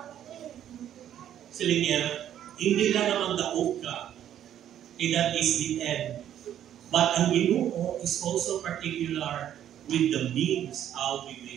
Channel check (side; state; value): left; quieter; 10.7 dB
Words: Sila niya, hindi lang naman daog ka, that is the end. But ang Ginoo is also particular with the means how we